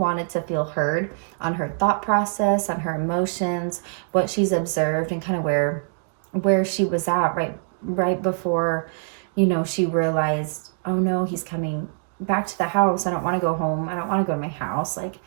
to feel heard on her thought process, on her emotions, what she's observed, and kind of where she was at right before, you know, she realized, oh no, he's coming back to the house. I don't want to go home. I don't want to go to my house. Like,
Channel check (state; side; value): silent; left; digital silence